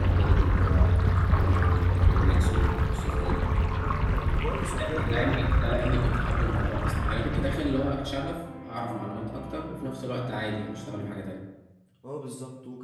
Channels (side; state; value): both; identical; correlation 1.00